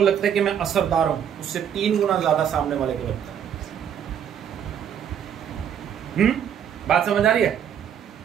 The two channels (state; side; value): quieter; left; 8.9 dB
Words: लगता है कि मैं असरदार हूं, उससे 3 गुना ज्यादा सामने वाले को लगता है। बात समझ आ रही है?